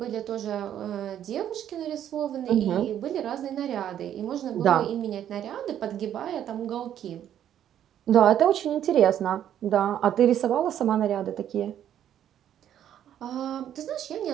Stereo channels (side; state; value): left; quieter; 10.5 dB